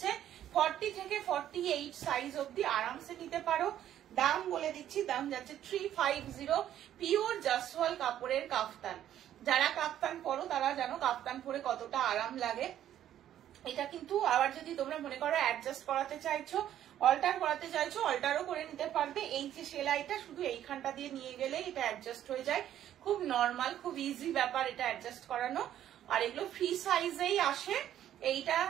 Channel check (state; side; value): quieter; left; 11.3 dB